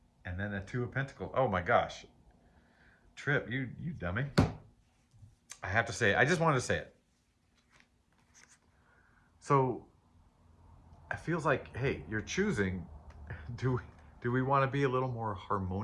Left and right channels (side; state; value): both; identical; correlation 1.00